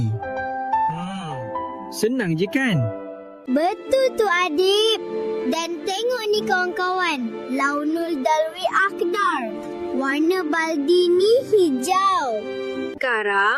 Senang je kan? Betul tu Adib. Dan tengok ni kawan-kawan. Launul dalwi akdar. Warna baldi ni hijau.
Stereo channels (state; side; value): identical; both; correlation 1.00